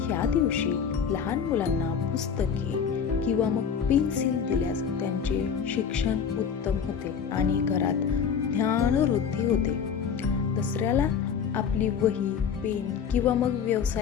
या दिवशी लहान मुलांना पुस्तके किंवा मग पेन्सिल दिल्यास त्यांचे शिक्षण उत्तम होते आणि घरात ज्ञानवृद्धी होते. दसऱ्याला आपली वही, पेन किंवा मग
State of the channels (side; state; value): right; quieter; 7.1 dB